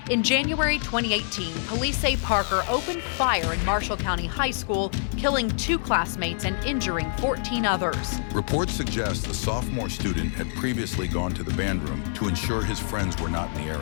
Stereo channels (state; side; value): silent; right; digital silence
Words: In January 2018, police say Parker opened fire in Marshall County High School, killing 2 classmates and injuring 14 others. Reports suggest the sophomore student had previously gone to the band room to ensure his friends were not in the